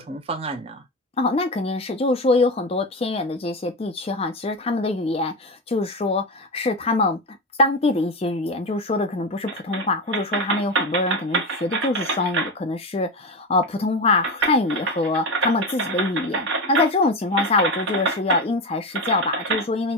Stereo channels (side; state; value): both; normal; correlation 0.18